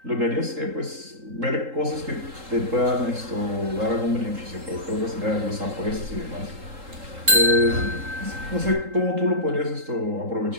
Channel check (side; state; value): left; late; 3.8 ms